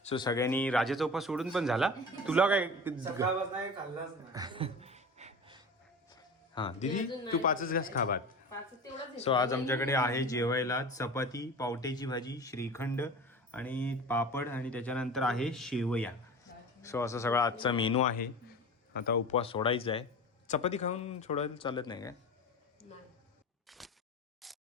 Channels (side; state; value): both; normal; correlation 0.33